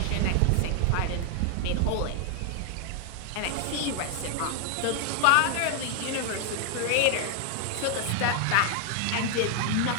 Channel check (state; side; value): different; both; correlation 0.00